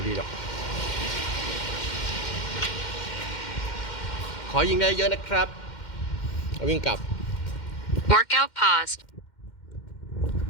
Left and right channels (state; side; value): late; right; 2.1 ms